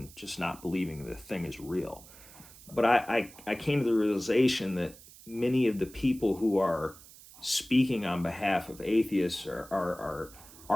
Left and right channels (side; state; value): right; noise; hiss, 20 dB below the sound